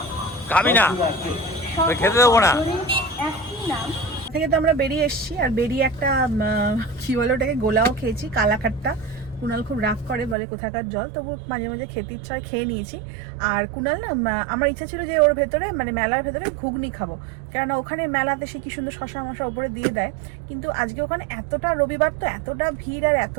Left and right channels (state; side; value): drops out; left; at 10.4 s